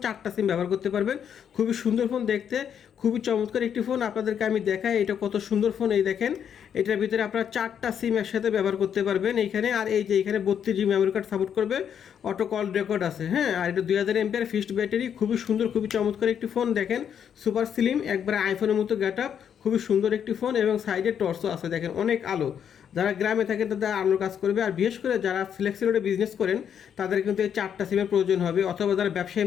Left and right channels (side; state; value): right; quieter; 8.4 dB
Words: 4টা সিম ব্যবহার করতে পারবেন। খুবই সুন্দর ফোন দেখতে, খুবই চমৎকার একটি ফোন। আপনাদেরকে আমি দেখাই এটা কত সুন্দর ফোন। এই দেখেন, এটার ভিতরে আপনারা 4টা সিম একসাথে ব্যবহার করতে পারবেন এইখানে। আর এই যে এখানে 32 GB মেমোরি কার্ড সাপোর্ট করবে, অটো কল রেকর্ড আছে। হ্যাঁ, আর এটা 2000 এমপিআর ফিক্সড ব্যাটারি। খুবই সুন্দর, খুবই চমৎকার একটি ফোন। দেখেন, সুপার স্লিম, একবারে আইফোনের মতো গেট আপ, খুবই সুন্দর একটি ফোন। এবং সাইডে টর্চও আছে, দেখেন অনেক আলো। যারা গ্রামে থাকেন তাদের আলোর কাজ করবে। আর বিশেষ করে যারা ফ্লেক্সিলোডে বিজনেস করেন তাদের কিন্তু এই 4টা সিমের প্রয়োজন হবে। অথবা যারা ব্যবসায়ী